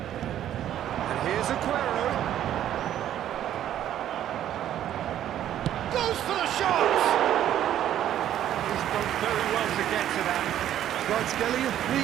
And here's Aguero. Goes for the shot! He's done very well to get to that. Kvaratskhelia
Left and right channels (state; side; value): quieter; left; 11.3 dB